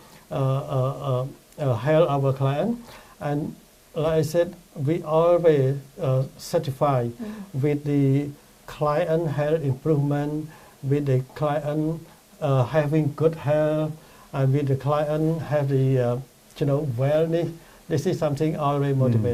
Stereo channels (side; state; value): both; identical; correlation 1.00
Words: help our client. And like I said, we always certify with the client health improvement, with the client having good health, and with the client have the wellness. This is something always